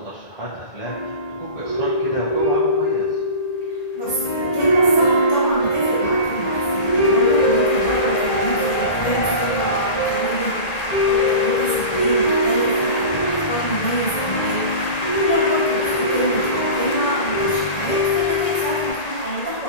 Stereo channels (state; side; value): late; right; 1.8 ms